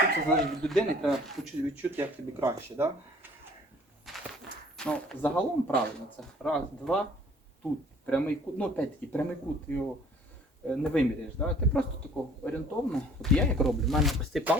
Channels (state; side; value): normal; both; correlation 0.53